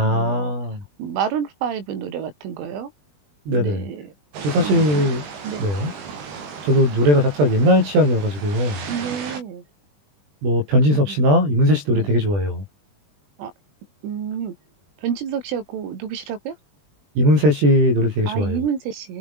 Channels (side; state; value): left; late; 20 ms